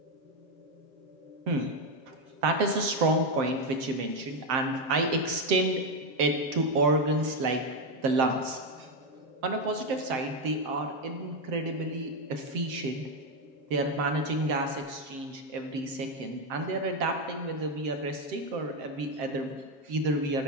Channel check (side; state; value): left; late; 7.7 ms